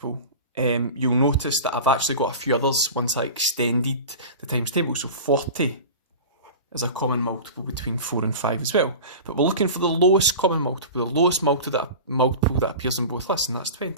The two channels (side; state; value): both; inverted; correlation -0.33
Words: You'll notice that I've actually got a few others once I extended the times table. So 40 is a common multiple between 4 and 5 as well. But we're looking for the lowest common multiple, the lowest multiple that appears in both lists, and that's